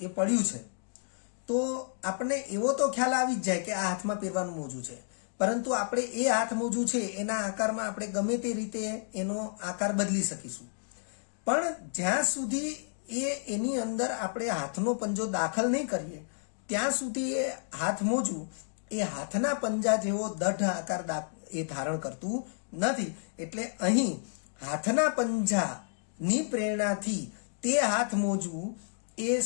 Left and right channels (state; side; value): silent; right; digital silence